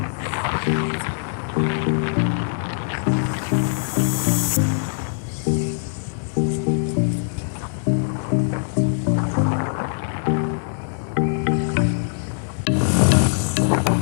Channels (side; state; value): right; silent; digital silence